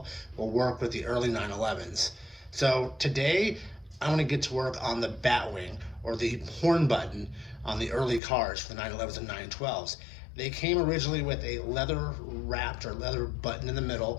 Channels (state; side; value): drops out; right; at 8.2 s